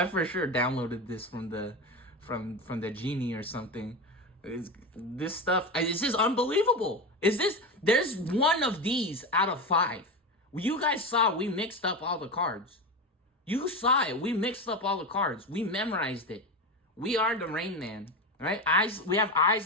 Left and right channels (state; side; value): normal; both; correlation 0.21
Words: for sure downloaded this from the genie or something. This stuff, this is unbelievable. There's one of these out of 5. You guys saw we mixed up all the cards. You saw it. We mixed up all the cards. We memorized it. We are the Rain Man. Right? Eyes. We have